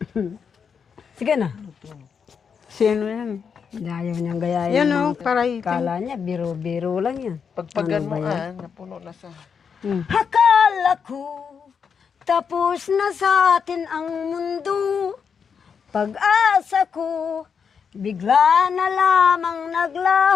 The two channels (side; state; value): right; quieter; 6.5 dB